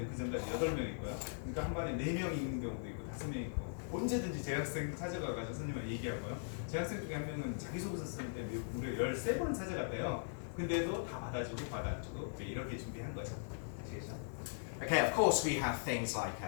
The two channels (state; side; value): silent; right; digital silence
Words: 그 전까지 8명 있고요. 그러니까 한 반에 4명 있는 경우도 있고 5명 있고. 언제든지 재학생 찾아가가지고 선생님한테 얘기하고요. 재학생 중에 한 명은 자기소개서 쓸 때 무려 13번을 찾아갔대요. 근데도 다 받아주고 이렇게 준비한 거죠. 아시겠죠? Okay, of course we have things like